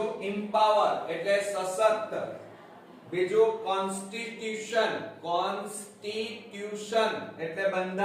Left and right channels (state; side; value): identical; both; correlation 1.00